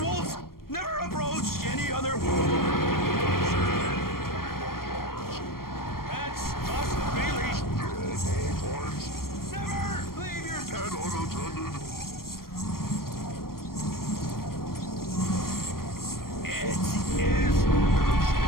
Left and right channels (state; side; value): late; right; 0.93 ms